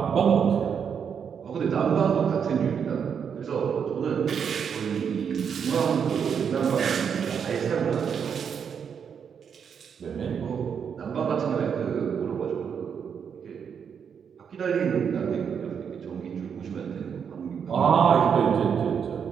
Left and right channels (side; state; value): left; quieter; 7.2 dB